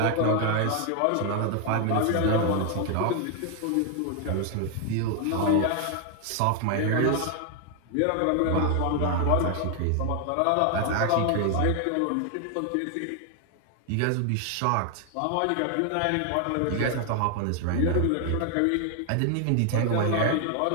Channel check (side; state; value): both; different; correlation 0.00